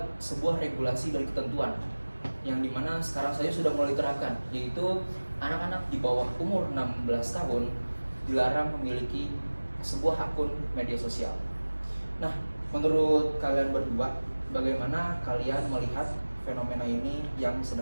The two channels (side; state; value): both; inverted; correlation -1.00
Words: sebuah regulasi dan ketentuan yang dimana sekarang saja sudah mulai diterapkan, yaitu anak-anak di bawah umur 16 tahun dilarang memiliki sebuah akun media sosial. Nah, menurut kalian berdua, bagaimana kalian melihat fenomena ini yang